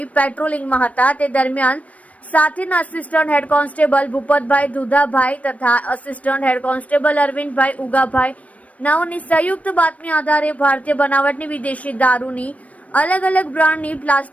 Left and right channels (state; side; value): late; right; 0.067 ms